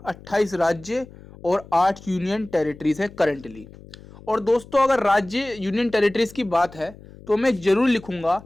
28 राज्य और 8 यूनियन टेरिटरीज है करेंटली। और दोस्तों अगर राज्य यूनियन टेरिटरीज की बात है तो मैं जरूर लिखूंगा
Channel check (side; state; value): left; noise; hum, 20 dB below the sound